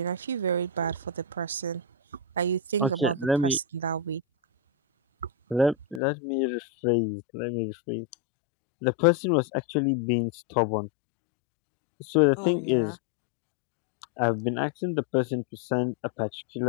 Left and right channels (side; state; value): right; drops out; at 6.0 s